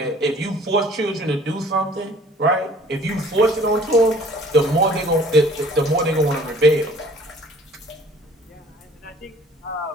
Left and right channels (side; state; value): both; normal; correlation 0.53